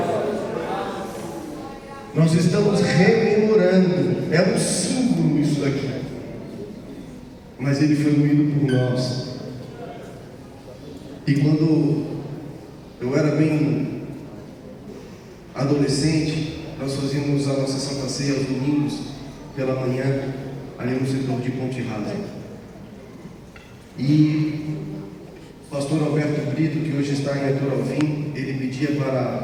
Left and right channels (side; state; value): both; identical; correlation 1.00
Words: Nós estamos rememorando. É um símbolo isso daqui. Mas Ele foi moído por nós. E quando eu era bem adolescente, nós fazíamos a nossa Santa Ceia aos domingos pela manhã, ali no setor de Ponte Rasa. E o pastor Alberto Brito, que hoje está em Arthur Alvim, ele pedia para a